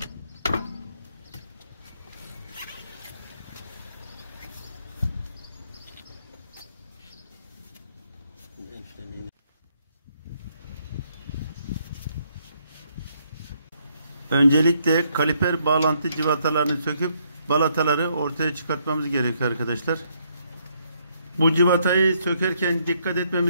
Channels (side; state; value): both; inverted; correlation -0.72